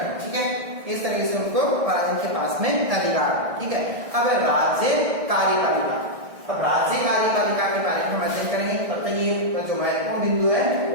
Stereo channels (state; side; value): late; left; 1.6 ms